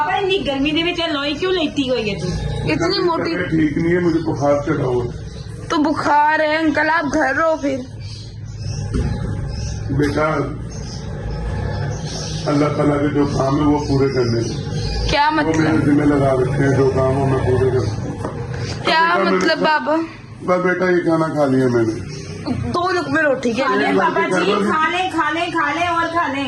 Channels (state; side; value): identical; both; correlation 1.00